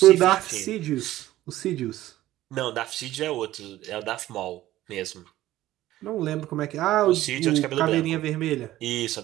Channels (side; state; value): left; quieter; 15.0 dB